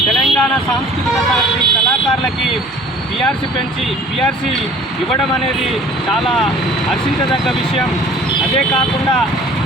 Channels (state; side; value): normal; both; correlation 0.48